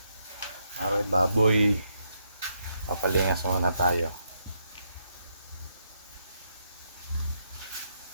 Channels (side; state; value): both; inverted; correlation -0.78